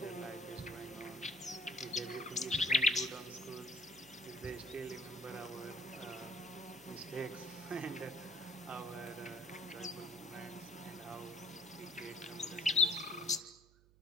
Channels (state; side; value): noise; right; hum, 27 dB below the sound